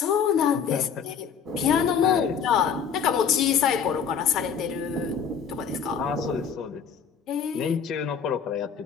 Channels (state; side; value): quieter; right; 7.0 dB